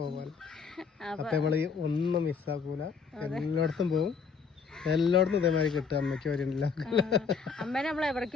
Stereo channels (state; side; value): quieter; right; 5.6 dB